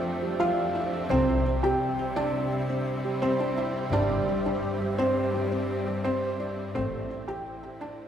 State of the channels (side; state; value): both; normal; correlation 0.77